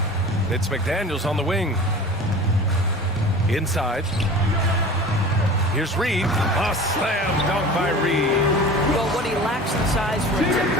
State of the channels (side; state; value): both; normal; correlation 0.38